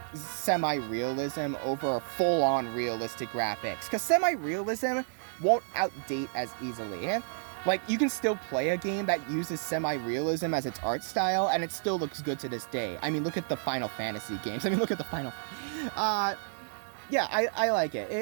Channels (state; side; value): silent; left; digital silence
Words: semi-realism over full-on realistic graphics, because semi-realism won't outdate as easily. Like, you can still play a game that uses semi-realism as its art style, and it still looks good to this day. I mean, look at the Final Fantasy games. I mean, look at the Final... yeah, I like it.